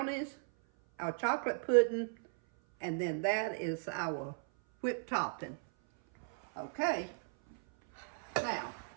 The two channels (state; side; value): silent; left; 54 dB below the other